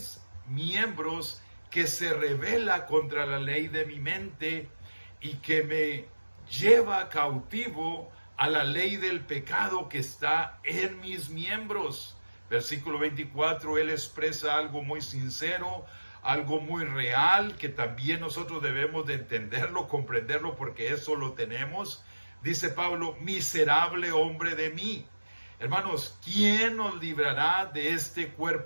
miembros que se rebela contra la ley de mi mente y que me lleva cautivo a la ley del pecado que está en mis miembros. Versículo 24, él expresa algo muy sincero, algo muy real, que también nosotros debemos de entenderlo, comprenderlo, porque eso lo tenemos. Dice Pablo: miserable hombre de mí. Hermanos, ¿quién nos librará de este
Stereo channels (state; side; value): inverted; both; correlation -1.00